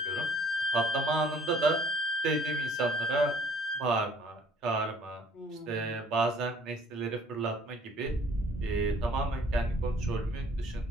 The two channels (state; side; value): normal; both; correlation 0.58